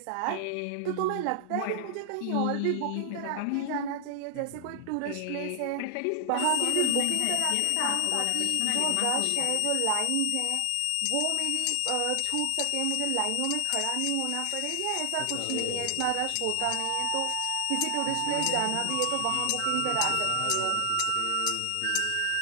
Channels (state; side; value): different; both; correlation 0.00